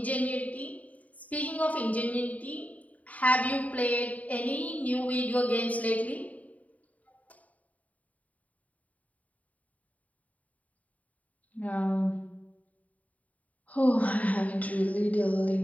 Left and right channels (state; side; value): late; right; 0.071 ms